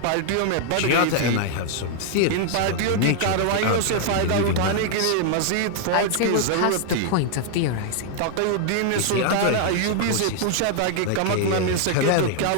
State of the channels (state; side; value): different; both; correlation 0.00